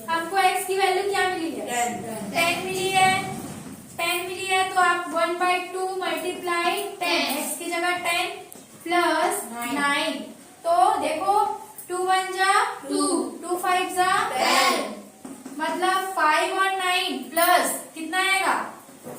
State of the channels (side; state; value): both; identical; correlation 1.00